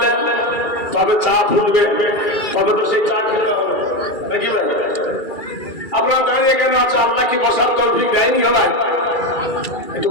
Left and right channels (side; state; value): right; late; 2.3 ms